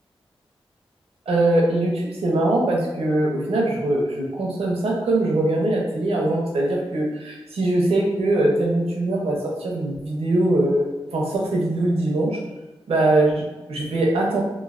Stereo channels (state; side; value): normal; both; correlation 0.82